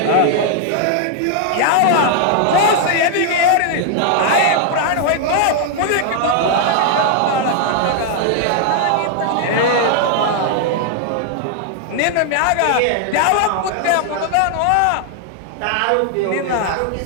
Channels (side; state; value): both; different; correlation 0.00